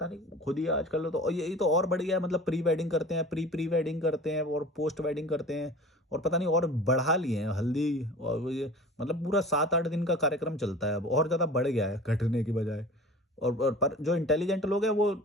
नहीं खुद ही आजकल तो, और यही तो और बढ़ गया है, मतलब प्री वेडिंग करते हैं, प्री वेडिंग करते हैं और पोस्ट वेडिंग करते हैं, और पता नहीं और बढ़ा लिए हैं हल्दी, और वो ये मतलब पूरा 7-8 दिन का कार्यक्रम चलता है, अब और ज़्यादा बढ़ गया है घटने की बजाय। और पर जो इंटेलिजेंट लोग हैं वो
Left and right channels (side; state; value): both; normal; correlation 0.39